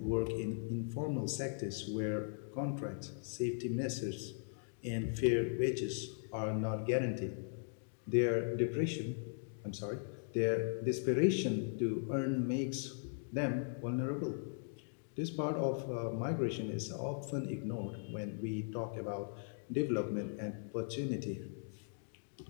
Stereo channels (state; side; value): silent; right; digital silence